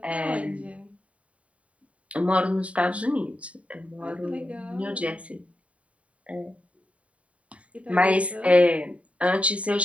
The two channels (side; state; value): left; late; 0.065 ms